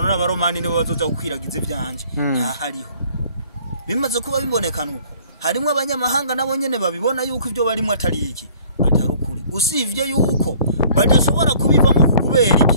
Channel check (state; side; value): inverted; both; correlation -0.55